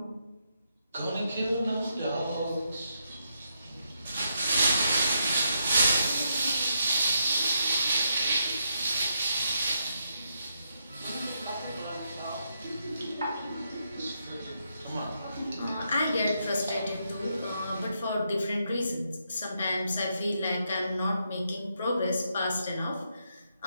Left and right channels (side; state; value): both; inverted; correlation -0.79